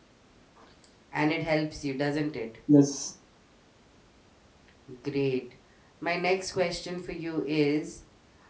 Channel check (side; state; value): both; identical; correlation 1.00